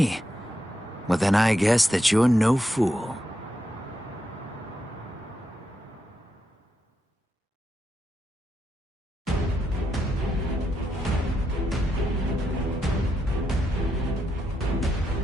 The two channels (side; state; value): both; normal; correlation 0.83